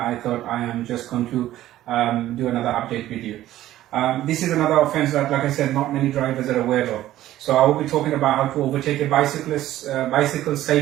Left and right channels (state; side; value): quieter; left; 14.0 dB